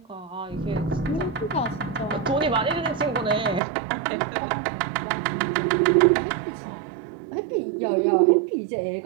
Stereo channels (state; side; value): drops out; left; at 3.6 s